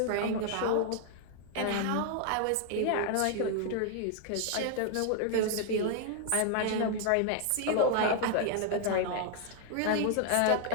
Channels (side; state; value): both; different; correlation 0.00